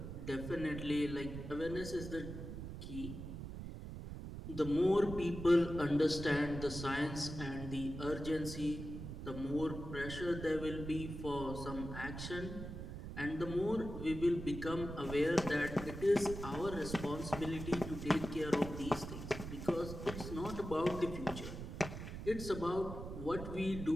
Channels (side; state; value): right; noise; rumble, 8 dB below the sound